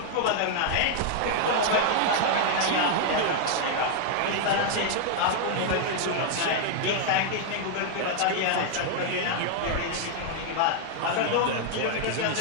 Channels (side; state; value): both; different; correlation 0.00